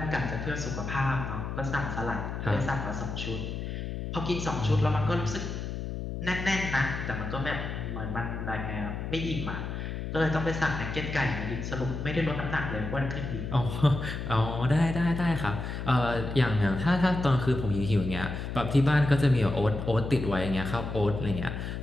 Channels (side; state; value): left; noise; hum, 5 dB below the sound